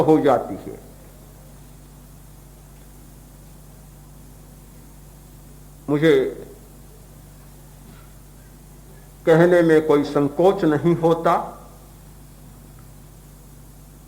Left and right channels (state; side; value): identical; both; correlation 1.00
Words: जाती है। मुझे कहने में कोई संकोच नहीं होता,